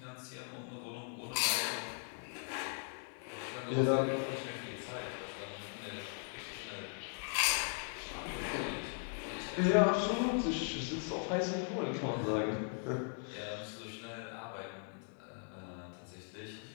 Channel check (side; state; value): right; silent; 52 dB below the other